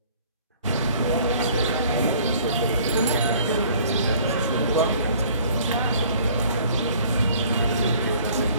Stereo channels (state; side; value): inverted; both; correlation -0.54